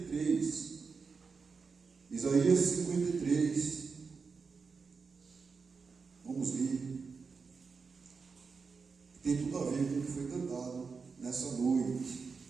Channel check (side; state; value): left; quieter; 5.0 dB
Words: Isaías 53. Vamos ler. Tem tudo a ver com o que foi cantado nessa noite.